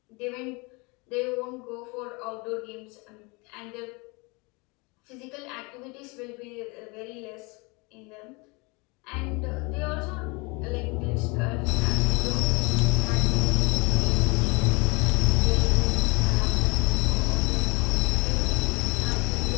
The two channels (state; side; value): quieter; right; 28.1 dB